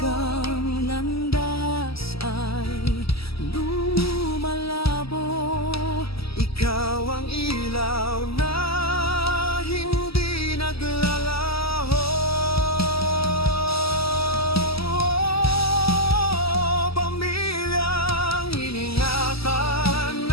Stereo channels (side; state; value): right; late; 0.76 ms